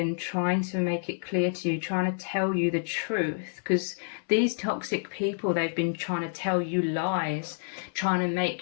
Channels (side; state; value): right; silent; 59 dB below the other